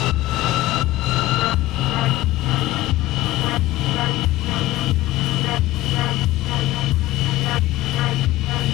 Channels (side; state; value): right; quieter; 16.9 dB